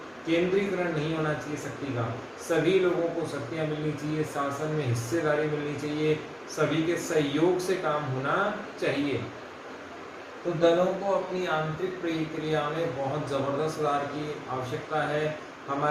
केंद्रीकरण नहीं होना चाहिए शक्ति का, सभी लोगों को शक्तियां मिलनी चाहिए, शासन में हिस्सेदारी मिलनी चाहिए, सभी के सहयोग से काम होना चाहिए। तो दलों को अपनी आंतरिक प्रक्रिया में बहुत ज़बरदस्त सुधार की आवश्यकता है।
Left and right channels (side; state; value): both; identical; correlation 1.00